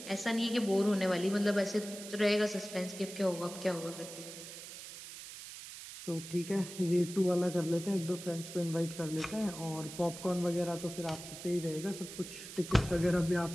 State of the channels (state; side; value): noise; right; hiss, 12 dB below the sound